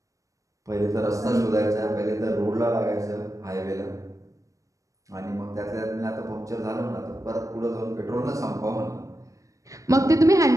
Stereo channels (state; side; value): late; left; 0.16 ms